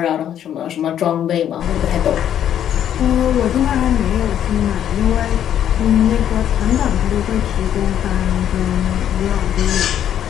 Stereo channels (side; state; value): right; quieter; 10.2 dB